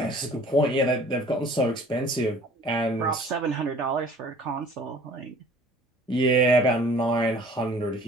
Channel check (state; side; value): normal; both; correlation 0.51